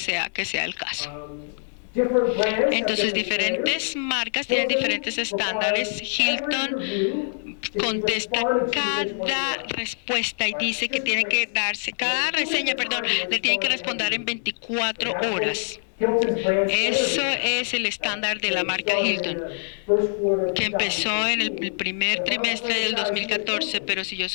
el caso. Entonces diferentes marcas tienen diferentes estándares. Hilton contesta cada respuesta y dice que tiene que cada reseña, le tiene que responder en 24 horas. Eso es el estándar de la marca Hilton, que empezó en el primer trimestre del 2014, pero si yo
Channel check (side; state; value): right; silent; 62 dB below the other